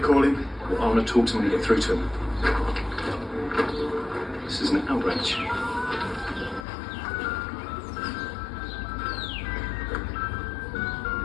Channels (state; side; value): drops out; right; at 6.7 s